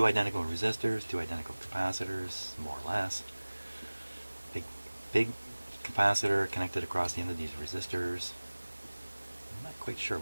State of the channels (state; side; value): inverted; both; correlation -1.00